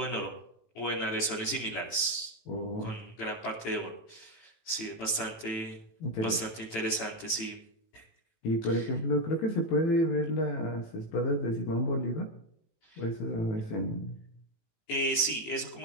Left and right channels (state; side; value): late; right; 18 ms